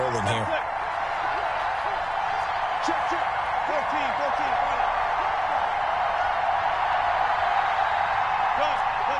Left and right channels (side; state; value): both; identical; correlation 1.00